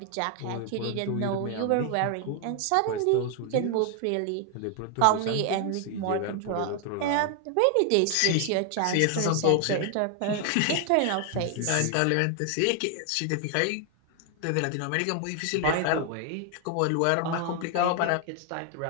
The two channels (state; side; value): different; both; correlation 0.00